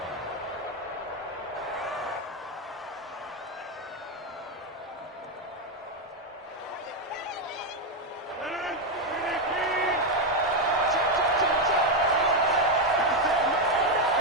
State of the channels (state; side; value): normal; both; correlation 0.05